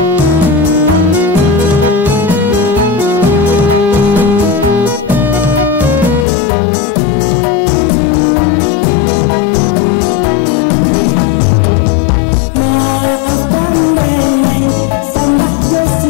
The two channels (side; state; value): right; drops out; at 6.2 s